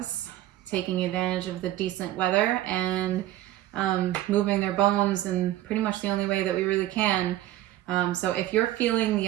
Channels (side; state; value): left; quieter; 14.5 dB